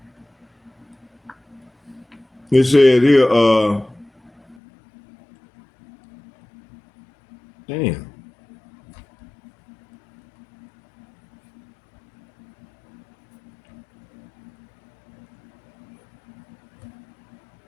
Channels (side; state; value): right; drops out; at 4.5 s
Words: it said here, damn.